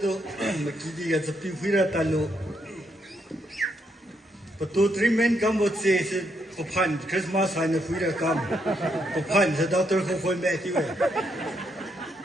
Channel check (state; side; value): normal; both; correlation 0.76